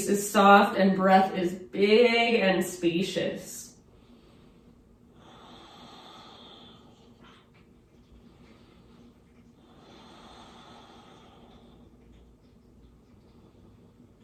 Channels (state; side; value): identical; both; correlation 1.00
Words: is soft and breath is big and spacious.